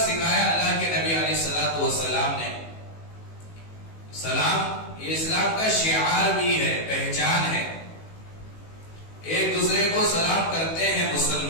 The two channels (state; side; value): late; right; 18 ms